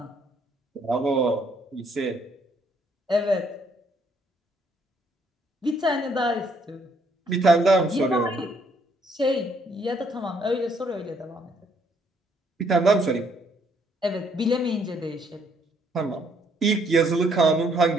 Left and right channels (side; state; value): both; normal; correlation 0.68